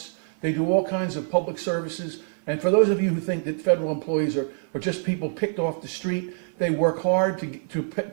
They do all kinds of public services. And for those of you who think that federal employees are just people picked off the street, They work hard to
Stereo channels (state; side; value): silent; left; 57 dB below the other